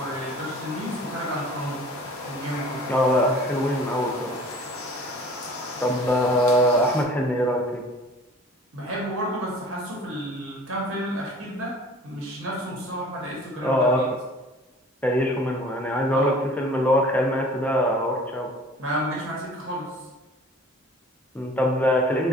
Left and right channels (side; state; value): both; normal; correlation 0.46